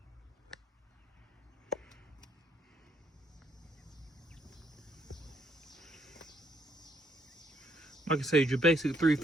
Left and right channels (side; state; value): both; normal; correlation 0.71